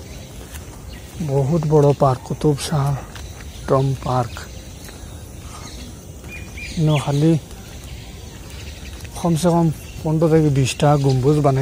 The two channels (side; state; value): both; identical; correlation 1.00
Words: বহুত বড় park Qutub Shah tomb park খালি কমসে কম 15 থেকে 20টা গম্বুজ